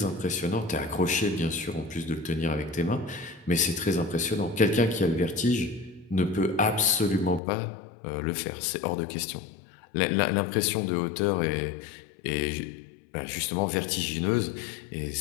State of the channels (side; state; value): right; drops out; at 7.4 s